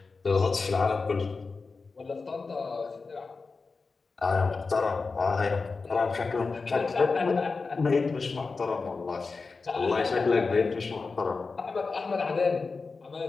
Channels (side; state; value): right; quieter; 4.3 dB